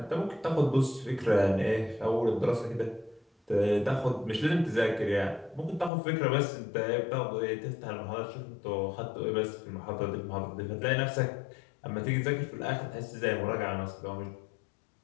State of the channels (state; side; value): drops out; right; at 5.9 s